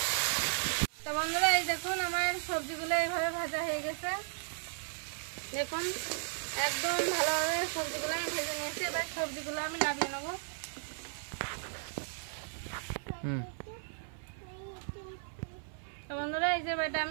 তো বন্ধুরা এই দেখুন আমার সবজিগুলো এইভাবে ভাজা হয়ে গেছে। দেখুন একদম ভালোভাবে সবজিগুলো আমি ভেজে নিয়েছি। এবার সবজিগুলো আমি নামিয়ে নেবো। তো বন্ধুরা এই যে বেটা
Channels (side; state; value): left; silent; 54 dB below the other